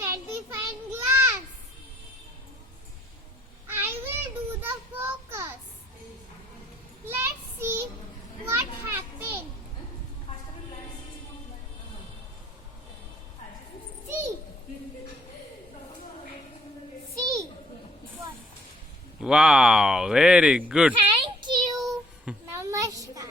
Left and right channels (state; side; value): normal; both; correlation 0.63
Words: magnifying glass. I will do the focus. Let's see what happened. See. See. What? Wow, very good. Thank you.